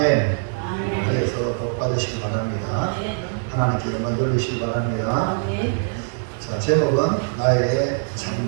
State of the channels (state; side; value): silent; left; digital silence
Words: 그래서 복 받으시기 바랍니다. 하나님께 영광 돌리시기 바랍니다. 자, 제목은 나의